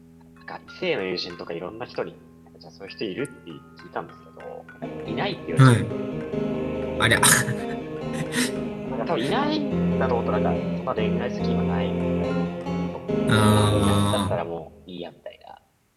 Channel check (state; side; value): identical; both; correlation 1.00